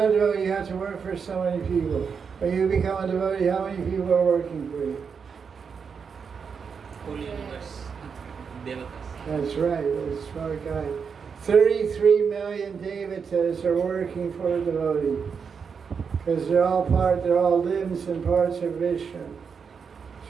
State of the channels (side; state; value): left; quieter; 6.1 dB